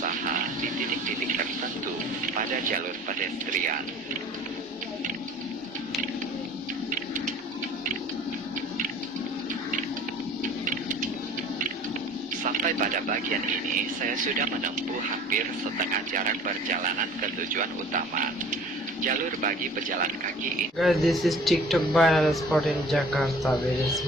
di titik-titik tertentu pada jalur pedestrian. Sampai pada bagian ini, saya sudah menempuh hampir setengah jarak perjalanan ke tujuan utama. Jalur bagi pejalan kaki ini. Guys, this is TikTok viral spot in Jakarta. Very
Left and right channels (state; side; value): normal; both; correlation 0.48